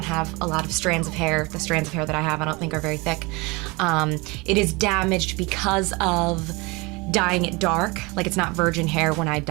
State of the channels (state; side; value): quieter; left; 25.8 dB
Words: have a lot of strands of hair. The strands of hair that I have I don't think are very thick. It is damaged because of dyeing it dark. Like, it's not virgin hair when I